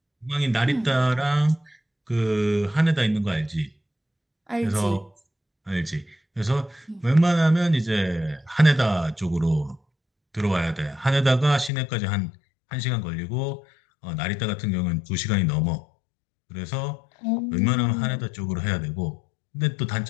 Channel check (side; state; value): right; drops out; at 11.7 s